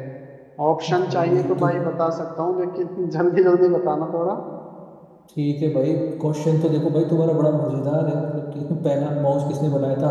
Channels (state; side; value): identical; both; correlation 1.00